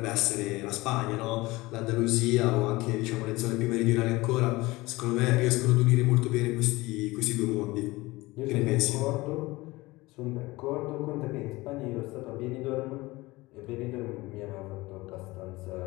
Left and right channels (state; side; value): quieter; right; 20.8 dB